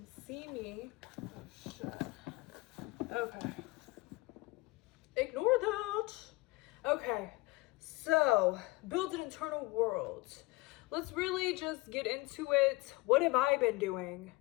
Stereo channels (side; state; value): right; quieter; 22.1 dB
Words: see me. Oh shit. Okay. Ignore that. Okay, so build an internal world. Let's really just get into it. What have I been doing?